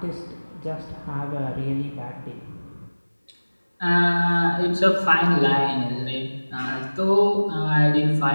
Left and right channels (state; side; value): inverted; both; correlation -1.00